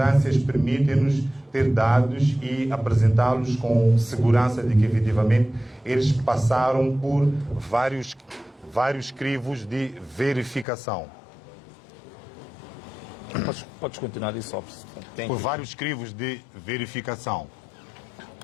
permitem-nos ter dados e apresentá-los com segurança de que, efetivamente, eles passaram por vários crivos de verificação. Podes continuar isso, Por vários crivos de verificação.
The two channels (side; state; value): right; drops out; at 10.7 s